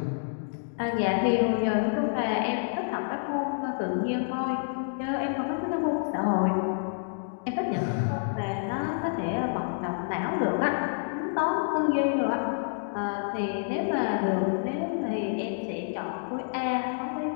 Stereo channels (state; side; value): silent; right; digital silence